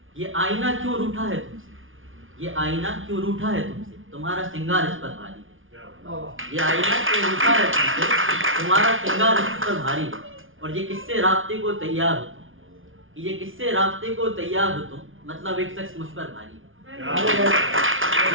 ये आईना क्यों रूठा है तुमसे। ये आईना क्यों रूठा है तुमसे, तुम्हारा श्रृंगार इस पर भारी है। ये आईना क्यों रूठा है तुमसे, तुम्हारा श्रृंगार इस पर भारी है। और ये किससे रास्ते को तैयार हो तुम। ये किससे रास्ते को तैयार हो तुम, मतलब एक शख्स मुझ पर भारी है।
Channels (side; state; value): left; late; 0.58 ms